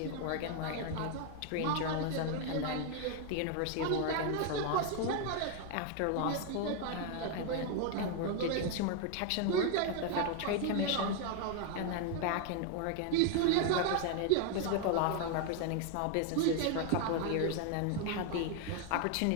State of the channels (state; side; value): different; both; correlation 0.00